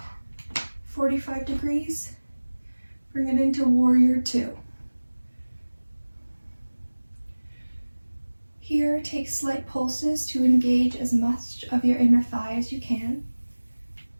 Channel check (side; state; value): both; inverted; correlation -1.00